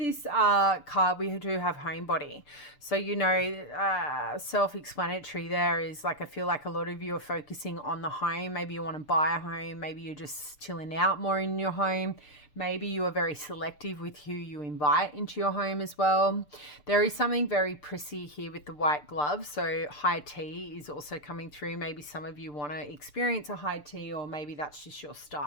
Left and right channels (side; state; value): right; late; 6.8 ms